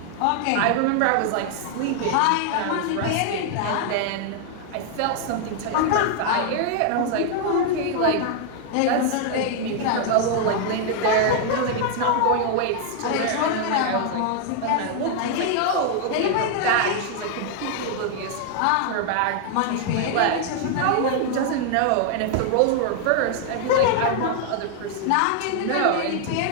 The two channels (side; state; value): both; different; correlation 0.00